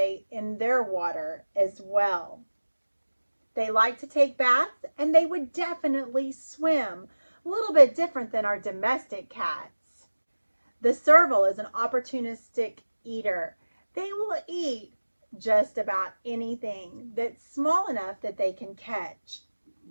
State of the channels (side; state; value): both; inverted; correlation -1.00